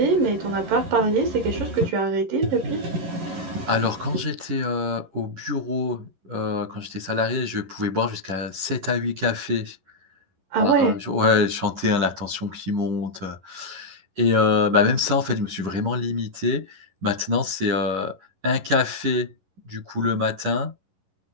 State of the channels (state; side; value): late; left; 11 ms